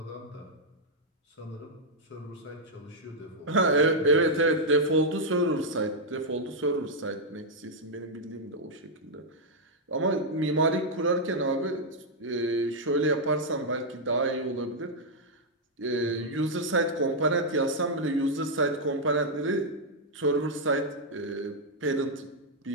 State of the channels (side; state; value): both; normal; correlation -0.04